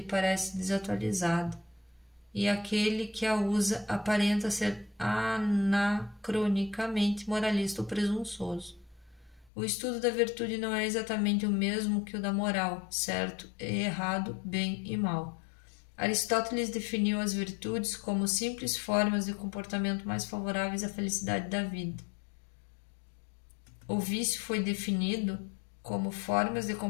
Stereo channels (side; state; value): right; drops out; at 9.5 s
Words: parece desatualizada, e aquele que a usa aparenta ser anacronicamente moralista ou presunçoso. O estudo da virtude não é exatamente o mesmo que o da moral, certo e errado, bem e mal. Aristóteles definiu as virtudes como simples formas de comportamento mais favoráveis à felicidade da vida. O vício foi definido como formas de